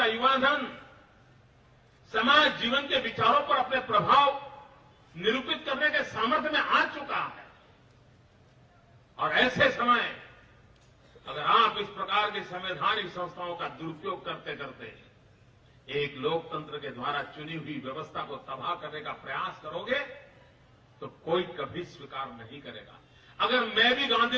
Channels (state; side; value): identical; both; correlation 1.00